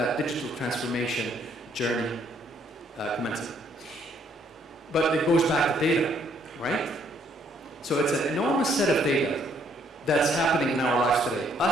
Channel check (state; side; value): normal; both; correlation 0.67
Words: digital transformation journey commencing. But it goes back to data, right? So it's an enormous set of data that's happening in our lives today.